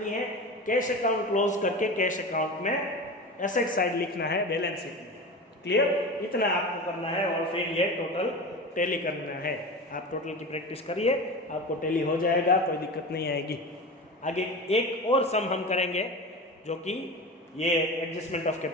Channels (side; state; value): both; normal; correlation 0.29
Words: है। कैश अकाउंट क्लोज करके कैश अकाउंट में एसेट साइड लिखना है बैलेंस शीट में। क्लियर? इतना आपको करना है और फिर ये टोटल टैली करना है। आप टोटल की प्रैक्टिस करिए, आपको टैली हो जाएगा, कोई दिक्कत नहीं आएगी। आगे एक और सम हम करेंगे जो कि ये एडजस्टमेंट ऑफ